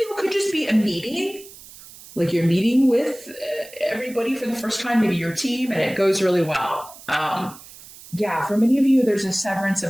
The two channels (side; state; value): right; noise; hiss, 19 dB below the sound